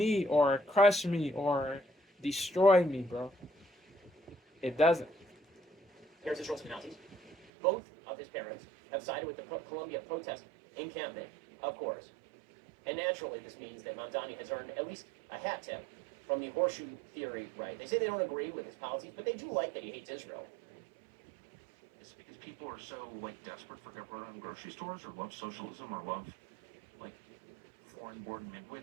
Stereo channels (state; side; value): drops out; left; at 7.5 s